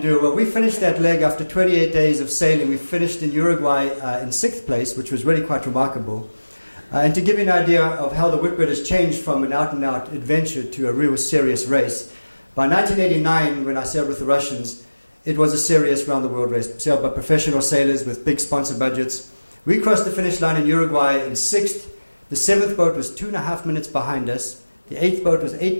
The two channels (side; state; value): both; inverted; correlation -1.00